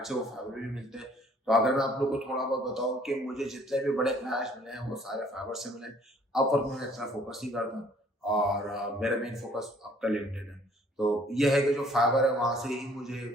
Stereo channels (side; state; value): both; normal; correlation 0.59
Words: है वो फाइवर भी मिलते हैं। तो अगर मैं आप लोग को थोड़ा बहुत बताऊं कि मुझे जितने भी बड़े क्लाइंट्स मिले हैं वो सारे फाइवर से मिले। अपवर्क में इतना फोकस नहीं करता और मेरा मेन फोकस अब का लिंक्डइन है। तो ये है कि जो फाइवर है वहां से ही मुझे